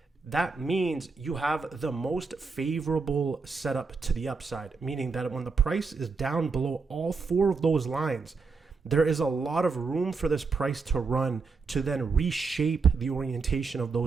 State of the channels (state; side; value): quieter; left; 4.6 dB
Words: that means you have the most favorable setup to the upside, meaning that when the price is down below all four of those lines, there is a lot of room for this price to run to then reshape the orientation of